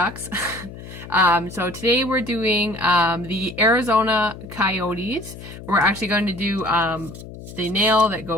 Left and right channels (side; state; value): left; noise; hum, 14 dB below the sound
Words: So today we're doing the Arizona Coyotes. We're actually going to do the nail that